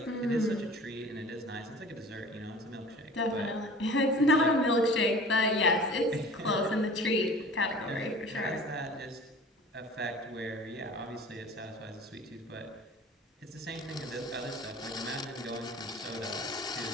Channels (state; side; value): normal; both; correlation 0.43